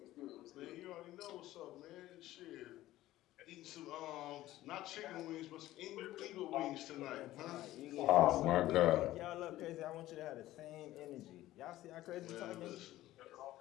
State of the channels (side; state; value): right; quieter; 15.4 dB